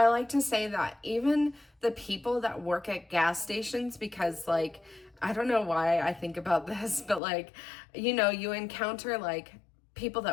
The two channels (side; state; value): right; drops out; at 7.2 s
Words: like to say that even the people that work at gas stations, because like, I don't know why I think about this, but like, you encounter like people